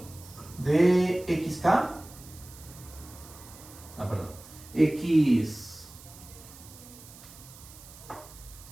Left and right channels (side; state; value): right; noise; hiss, 19 dB below the sound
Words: de xk, x